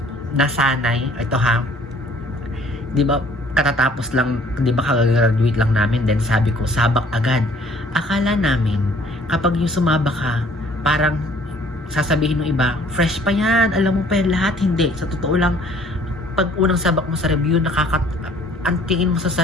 nasanay, ito ha, di ba katatapos lang, di ba kagagraduate lang namin, then sabi ko, sabak agad. Akala namin, kapag yung sumabak ka, parang sasabihin ng iba, fresh pa yan, alam mo pa yan lahat. Hindi. Sa totoo lang, pag unang sabak mo sa review, ang tingin mo sa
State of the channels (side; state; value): both; normal; correlation 0.57